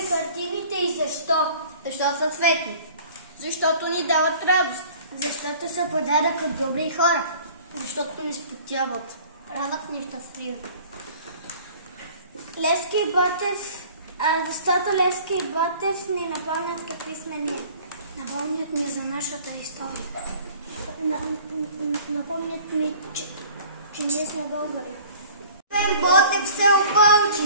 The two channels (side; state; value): both; inverted; correlation -0.48